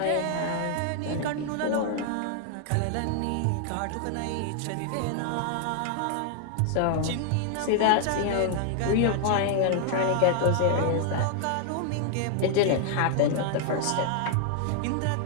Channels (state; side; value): different; both; correlation 0.00